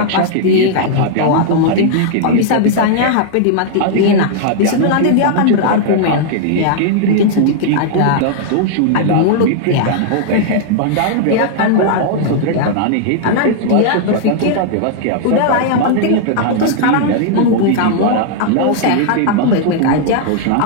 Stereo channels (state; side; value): different; both; correlation -0.01